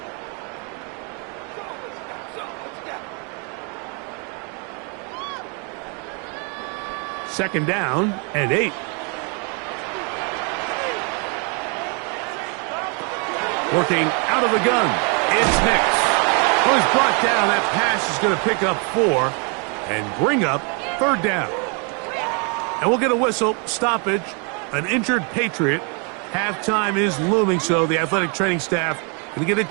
Second down and 8. Working out of the gun, it's Nix. Well, he's brought down. That pass is going to pick up 4 and bring up 3rd down. And we'll get a whistle, stoppage, an injured Patriot. Halftime is looming, so the athletic training staff going to get a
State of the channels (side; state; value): left; quieter; 35.9 dB